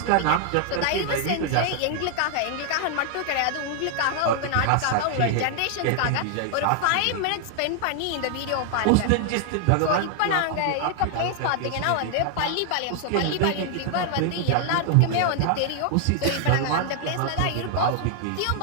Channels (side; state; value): both; different; correlation 0.00